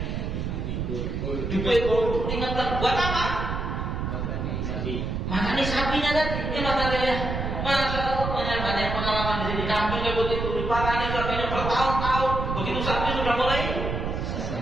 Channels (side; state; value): right; noise; rumble, 3 dB below the sound